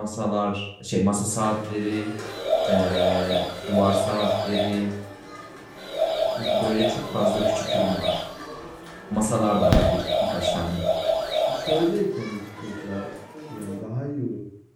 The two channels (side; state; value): both; identical; correlation 1.00